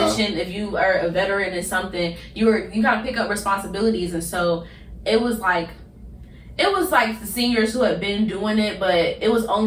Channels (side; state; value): both; identical; correlation 1.00